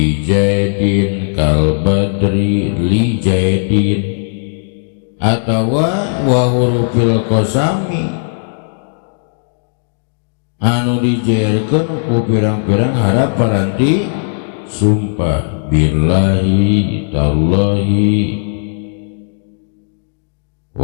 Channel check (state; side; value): silent; right; digital silence